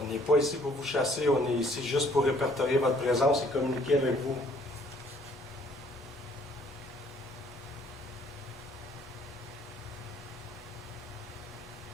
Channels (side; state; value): both; normal; correlation 0.61